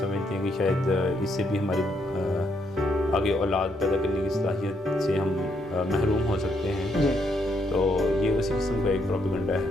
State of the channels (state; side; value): normal; both; correlation 0.75